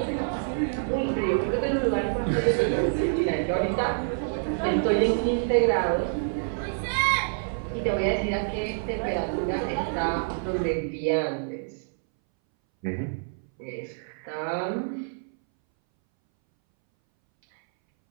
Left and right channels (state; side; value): silent; left; 60 dB below the other